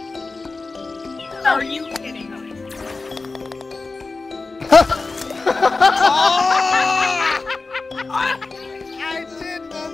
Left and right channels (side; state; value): right; quieter; 3.8 dB